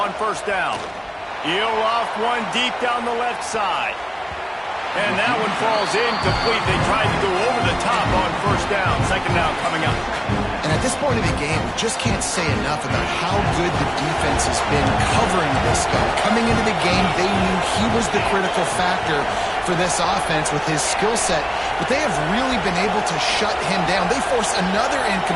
1st down. He'll off one deep down the left side. And that one falls incomplete. They tried to go over the top on 1st down. 2nd down coming up. And at this point of the game, we just can't say enough about how good the defense has been covering this guy. Coming into the game, they knew he was the critical factor for this offense with his skill set. But they have really been able to shut him down. They force another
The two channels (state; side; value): identical; both; correlation 1.00